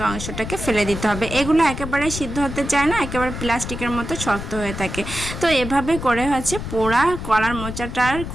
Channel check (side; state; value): left; noise; rumble, 7 dB below the sound